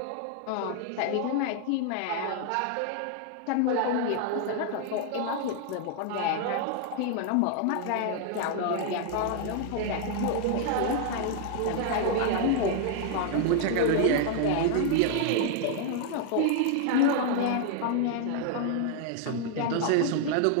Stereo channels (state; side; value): different; both; correlation 0.00